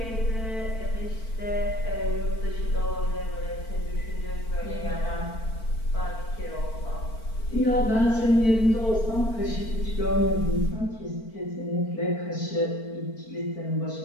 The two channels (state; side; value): late; right; 4.5 ms